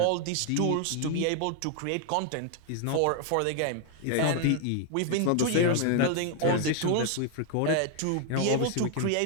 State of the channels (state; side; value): different; both; correlation 0.00